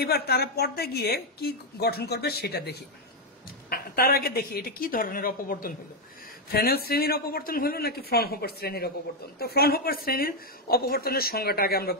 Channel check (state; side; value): normal; both; correlation 0.02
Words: তারা পর্দায় গিয়ে কি গঠন করবে সেটা দেখি। তার আগে দেখি এটা কি ধরনের অপবর্তন হলো, ফ্রেনেল শ্রেণীর অপবর্তন হলো নাকি ফ্রনহোফার শ্রেণীর অপবর্তন। তো ফ্রনহোফার শ্রেণীর অপবর্তনের সংজ্ঞাটা আগে আমরা